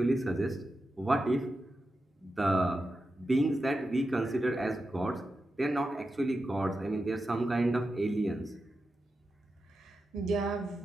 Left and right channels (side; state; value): both; normal; correlation 0.90